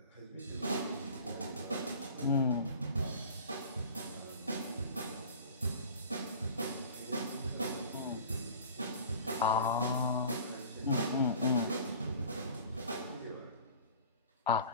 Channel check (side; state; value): both; inverted; correlation -0.43